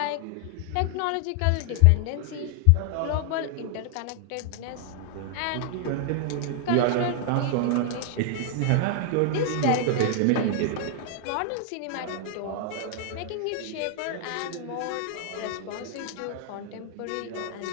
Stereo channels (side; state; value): both; different; correlation 0.00